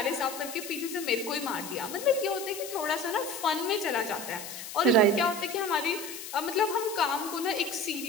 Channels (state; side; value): noise; left; hiss, 10 dB below the sound